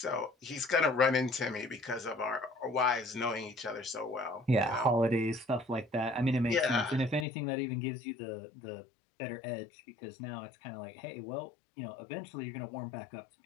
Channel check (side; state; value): right; drops out; at 7.2 s